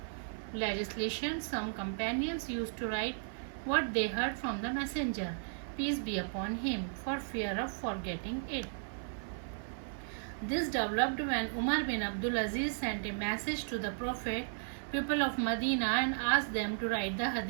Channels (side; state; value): left; silent; 54 dB below the other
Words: legislation. Some companions used to write what they heard from the Messenger, peace be upon him, for fear of forgetting it. This developed when Umar bin Abdul Aziz sent a message to the Prophet, people of Medina, and asked them to write the